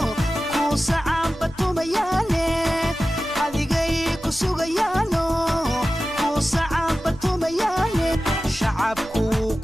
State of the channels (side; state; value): both; normal; correlation 0.95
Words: ku sacaan batumayaane adigay ku sugayaano ku sacaan batumayaane shacabku